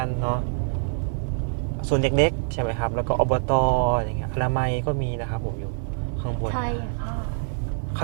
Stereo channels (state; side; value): silent; left; digital silence